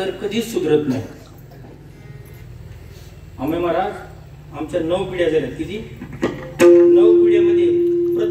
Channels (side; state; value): both; identical; correlation 1.00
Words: कधीच सुधरत नाही. आम्ही महाराज आमच्या 9 पिढ्या झाल्या. किती? 9 पिढ्यामध्ये